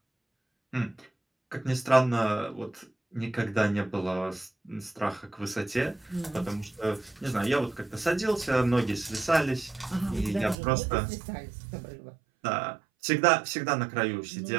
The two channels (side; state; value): left; drops out; at 10.6 s